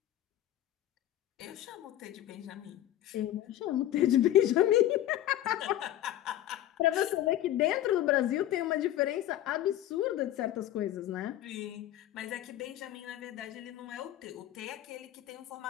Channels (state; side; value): quieter; right; 13.1 dB